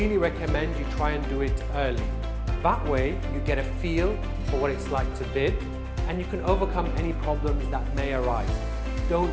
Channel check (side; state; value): both; identical; correlation 1.00